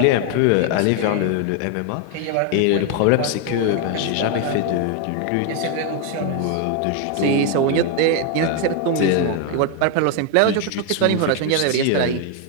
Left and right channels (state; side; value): different; both; correlation 0.01